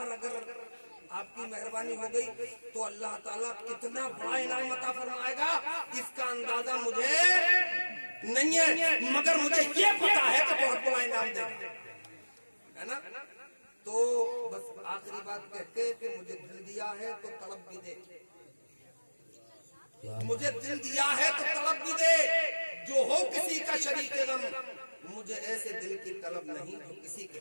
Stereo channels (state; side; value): inverted; both; correlation -1.00